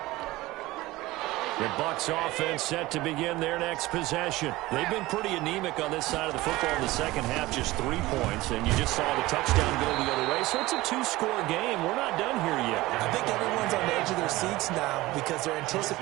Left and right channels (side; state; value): left; quieter; 18.9 dB